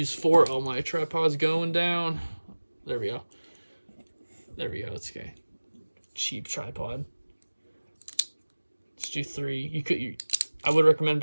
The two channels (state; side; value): inverted; both; correlation -1.00